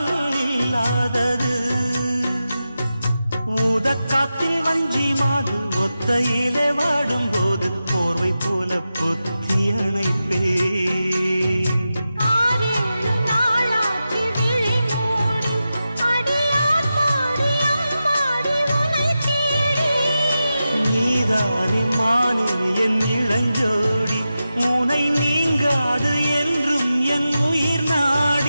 இல்லாதது ஊதக்காத்தில் வஞ்சி மாது ஒத்தையிலே வாடும் போது போர்வை போல பொத்தி அணைப்பே நீதானே மானே என் இளஞ்சோடி உனை நீங்காது என்றும் என் உயிர்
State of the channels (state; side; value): inverted; both; correlation -0.91